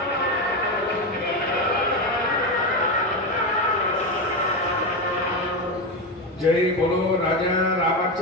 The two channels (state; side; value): normal; both; correlation 0.14